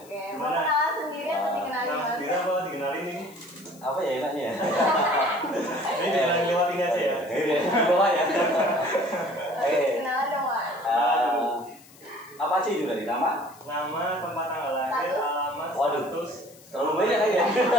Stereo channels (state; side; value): noise; left; hiss, 24 dB below the sound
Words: mau kenalan sendiri atau dikenalin Mas Mas? Bira apa dikenalin ini? Apa ya enaknya ya? Ini dikenalin lewat ini aja ya. Bawa ya. Oke, kenalan dong Mas. Apa aja itu dari nama? Nama, tempat tanggal lahir, alamat, Waduh. status. Terlalu banyak kan ya?